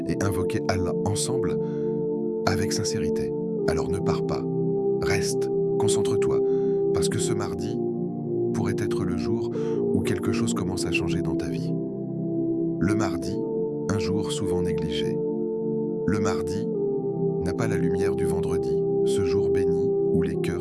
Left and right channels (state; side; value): identical; both; correlation 1.00